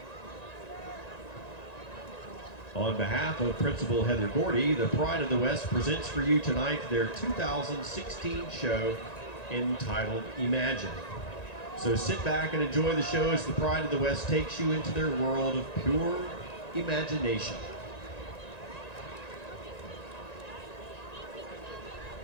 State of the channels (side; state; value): right; late; 1.9 ms